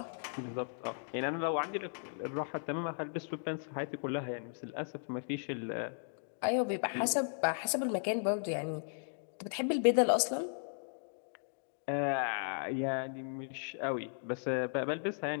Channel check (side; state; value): right; silent; digital silence